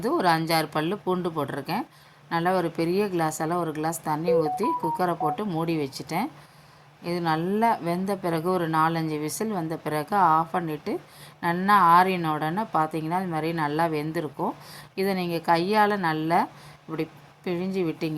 ஒரு 5-6 பல் பூண்டு போட்டிருக்கேன். நல்லா ஒரு பெரிய கிளாஸால் ஒரு கிளாஸ் தண்ணி ஊற்றி குக்கரை போட்டு மூடி வச்சுட்டேன். இது நல்லா வெந்த பிறகு ஒரு 4-5 விசில் வந்த பிறகு ஆஃப் பண்ணிவிட்டு நல்லா ஆறின உடனே பார்த்தீங்கன்னா இது மாதிரி நல்லா வெந்திருக்கும். இதை நீங்கள் கையால் நல்லா இப்படி பிழிஞ்சு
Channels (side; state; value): both; identical; correlation 1.00